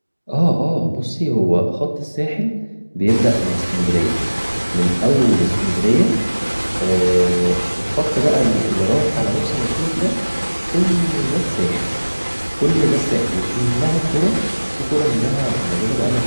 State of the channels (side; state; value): both; inverted; correlation -1.00